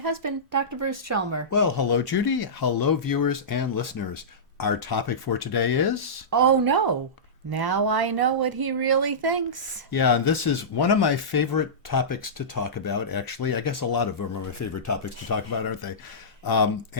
Dr. Bruce Chalmer. Well, hello, Judy. Hello, viewers and listeners. Our topic for today is... Oh no, now I know what he really thinks. Yeah, this is one of my favorite topics to talk about, actually. I guess a lot of them are my favorite topics to talk about, aren't they?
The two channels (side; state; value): both; normal; correlation -0.18